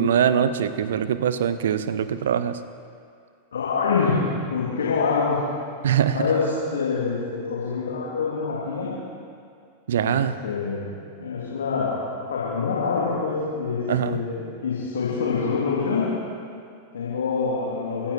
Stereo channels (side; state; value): both; inverted; correlation -0.42